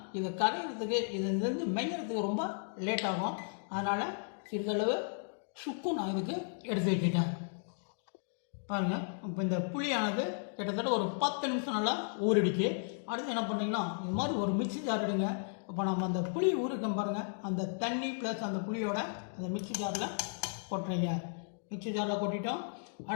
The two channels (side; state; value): right; silent; digital silence